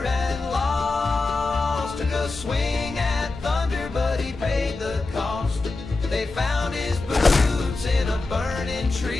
and lost. Took a swing at thunder, but he paid the cost. They found his boots in a burning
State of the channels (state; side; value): quieter; right; 3.4 dB